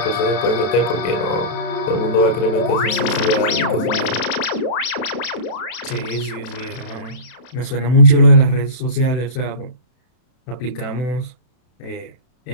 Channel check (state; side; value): late; right; 32 ms